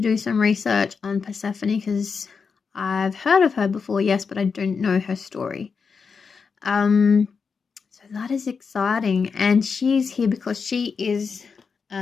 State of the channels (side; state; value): right; quieter; 5.5 dB